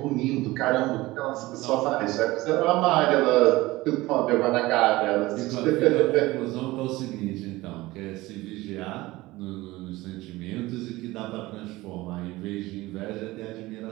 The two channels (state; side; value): quieter; left; 19.4 dB